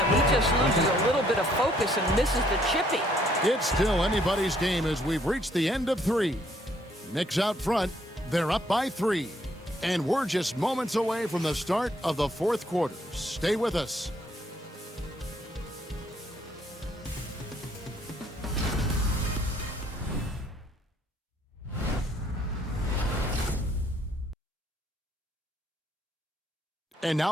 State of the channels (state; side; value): normal; both; correlation 0.66